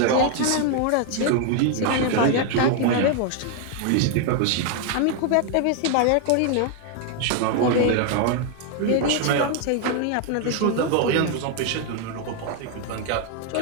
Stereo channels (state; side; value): different; both; correlation 0.00